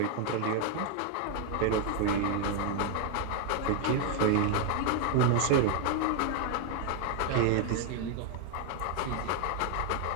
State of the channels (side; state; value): both; different; correlation 0.00